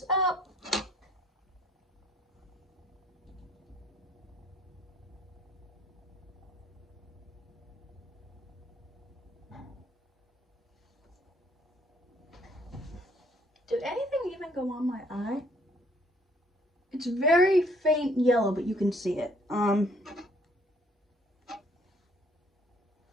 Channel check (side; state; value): both; normal; correlation 0.63